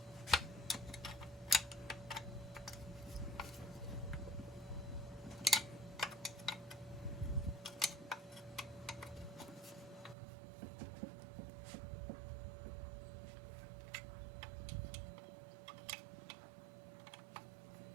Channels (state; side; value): drops out; left; at 10.2 s